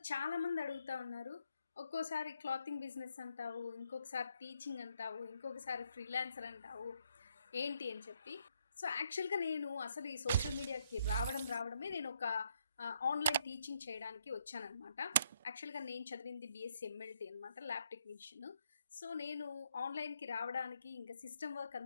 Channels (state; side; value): inverted; both; correlation -0.74